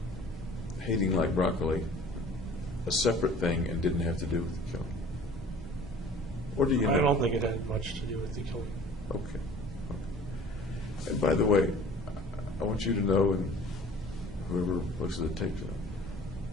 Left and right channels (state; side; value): normal; both; correlation 0.47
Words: hating like broccoli a separate thing and didn't have to do with the killing? Or do you know? I don't think it had much to do with the killing. Okay. And by the way, I want you to know, and whoever looks at the tape,